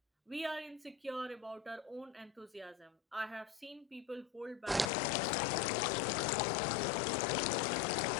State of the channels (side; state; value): right; drops out; at 4.9 s